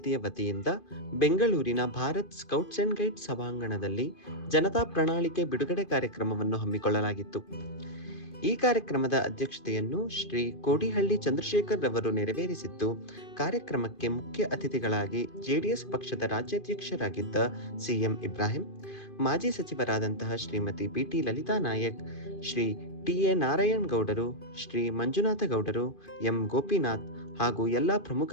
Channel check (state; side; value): late; right; 2.5 ms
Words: ವತಿಯಿಂದ ಬೆಂಗಳೂರಿನ ಭಾರತ್ ಸ್ಕೌಟ್ಸ್ ಅಂಡ್ ಗೈಡ್ಸ್ ಸಭಾಂಗಣದಲ್ಲಿ ಜನತಾ ಪ್ರಣಾಳಿಕೆ ಬಿಡುಗಡೆ ಕಾರ್ಯಕ್ರಮವನ್ನು ಹಮ್ಮಿಕೊಳ್ಳಲಾಗಿತ್ತು. ಈ ಕಾರ್ಯಕ್ರಮದ ಅಧ್ಯಕ್ಷತೆಯನ್ನು ಶ್ರೀ ಕೋಡಿಹಳ್ಳಿ ಚಂದ್ರಶೇಖರ್ ರವರು ನೆರವೇರಿಸಿದ್ದು, ಕಾರ್ಯಕ್ರಮಕ್ಕೆ ಮುಖ್ಯ ಅತಿಥಿಗಳಾಗಿ ಜೆಡಿಎಸ್ ಪಕ್ಷದ ರಾಜ್ಯಾಧ್ಯಕ್ಷರಾಗಿದ್ದ ಸಿಎಂ ಇಬ್ರಾಹಿಂ, ಮಾಜಿ ಸಚಿವರಾದಂತಹ ಶ್ರೀಮತಿ ಬಿಟಿ ಲಲಿತಾ ನಾಯಕ್, ಶ್ರೀ ಟಿ.ಎ. ನಾರಾಯಣ್ ಗೌಡರು, ಶ್ರೀ ಮಂಜುನಾಥ ಗೌಡರು, ಎಂ ಗೋಪಿನಾಥ್ ಹಾಗೂ ಎಲ್ಲ